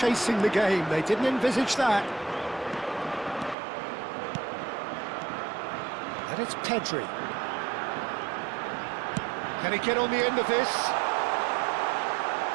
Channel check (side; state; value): left; drops out; at 3.6 s